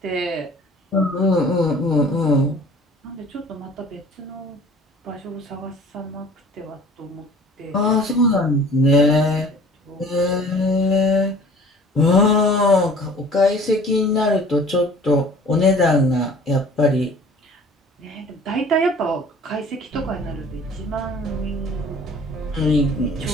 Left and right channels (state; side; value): normal; both; correlation 0.48